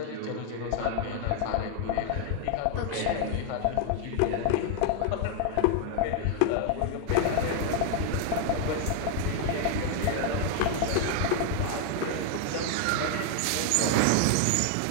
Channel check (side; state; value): both; different; correlation 0.00